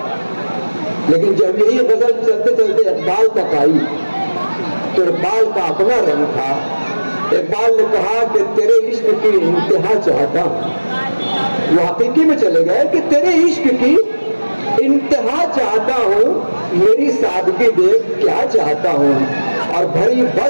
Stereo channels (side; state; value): both; inverted; correlation -1.00